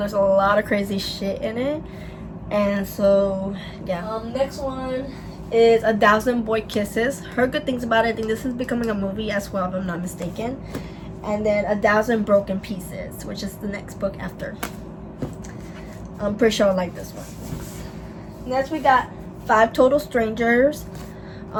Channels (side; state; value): both; identical; correlation 1.00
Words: a lot of crazy shit in it. And so, yeah. Next one is 1,000 Boy Kisses. Heard good things about it. I think this is becoming a movie as well, if I'm not mistaken. And then 1,000 Broken Pieces, which is the next book after. I'm pretty sure I like this one. Next we got 5 Total Strangers.